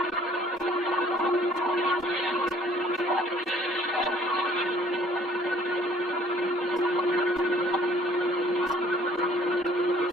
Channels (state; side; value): normal; both; correlation 0.57